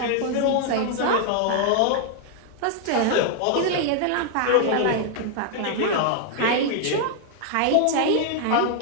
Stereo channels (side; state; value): both; different; correlation 0.00